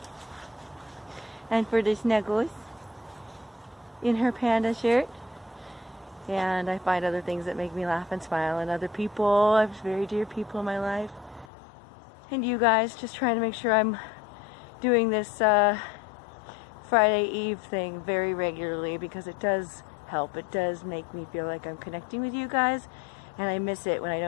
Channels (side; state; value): right; drops out; at 11.5 s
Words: And for the snuggles in her panda shirt. And I find other things that make me laugh and smile, and other people. I have very dear people in my life. And you guys, just trying to make sure I'm doing this Friday Eve thing very regularly, because it does help. It does make me feel like I'm connecting with you guys, and I miss it when I